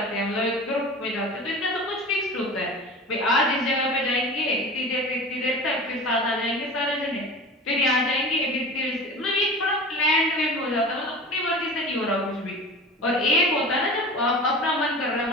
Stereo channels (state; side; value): normal; both; correlation 0.35